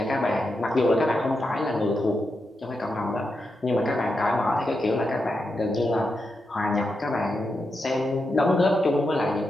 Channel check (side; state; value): both; normal; correlation 0.86